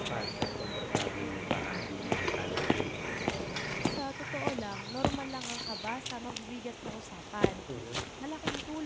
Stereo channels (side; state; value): both; identical; correlation 1.00